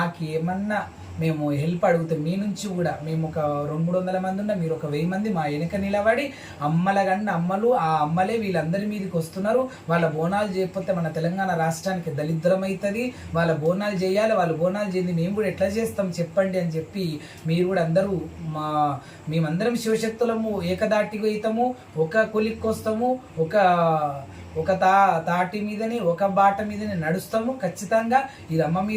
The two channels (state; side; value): identical; both; correlation 1.00